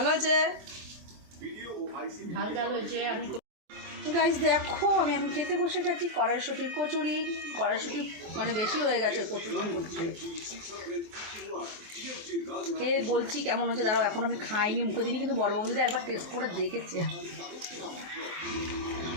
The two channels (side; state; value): left; late; 23 ms